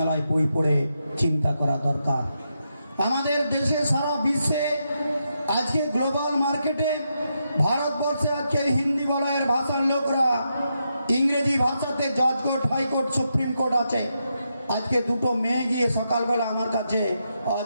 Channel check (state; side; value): inverted; both; correlation -0.83